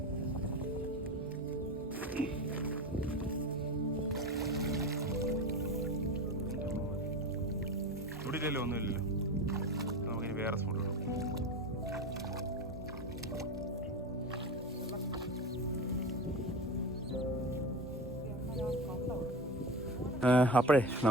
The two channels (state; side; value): normal; both; correlation 0.26